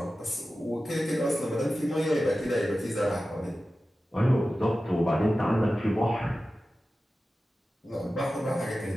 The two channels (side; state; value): both; normal; correlation 0.94